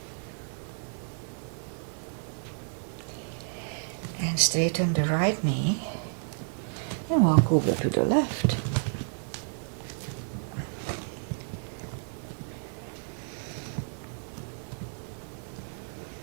And straighten the right knee and walk over to the left.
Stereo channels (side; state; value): left; silent; 57 dB below the other